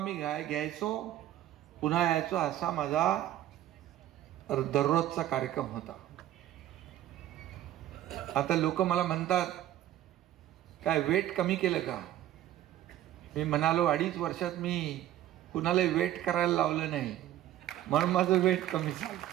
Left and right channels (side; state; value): left; quieter; 13.0 dB